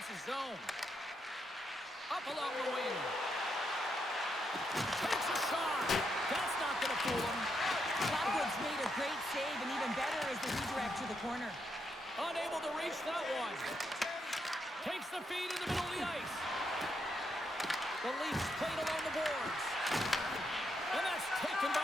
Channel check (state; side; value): normal; both; correlation 0.80